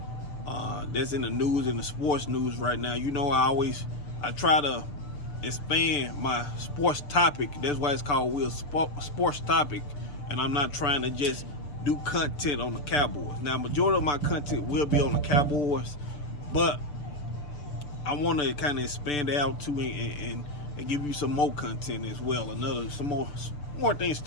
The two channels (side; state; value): right; late; 6.8 ms